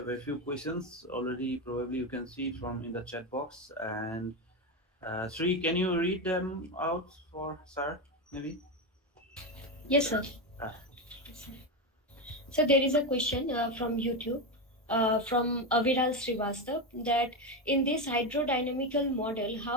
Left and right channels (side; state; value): both; normal; correlation 0.13